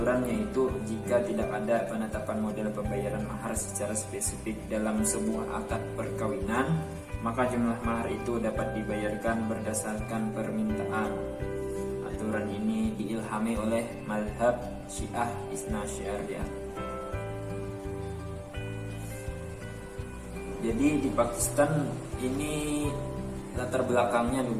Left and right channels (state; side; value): identical; both; correlation 1.00